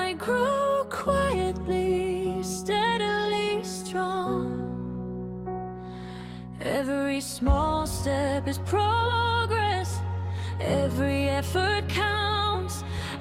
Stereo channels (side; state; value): both; identical; correlation 1.00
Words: grow quietly, steadily strong. Every small step is progress, every effort counts.